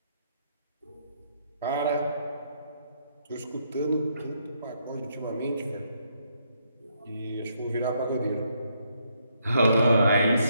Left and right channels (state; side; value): inverted; both; correlation -0.74